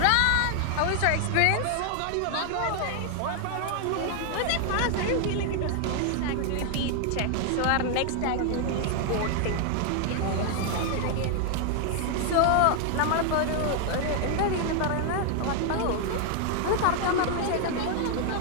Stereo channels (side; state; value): both; different; correlation 0.00